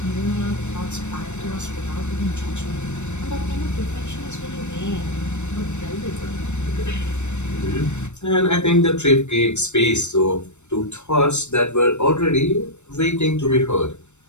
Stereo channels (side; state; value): right; late; 0.83 ms